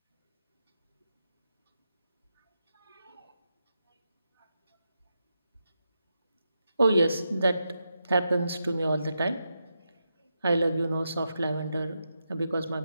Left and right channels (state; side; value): inverted; both; correlation -0.86